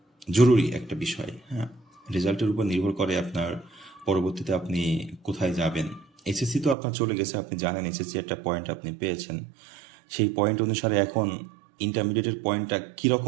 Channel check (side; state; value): left; drops out; at 6.8 s